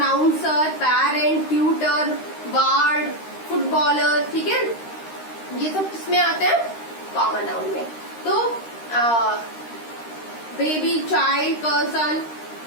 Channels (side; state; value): right; late; 13 ms